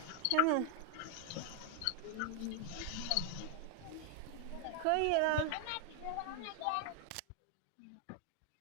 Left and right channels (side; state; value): both; different; correlation 0.00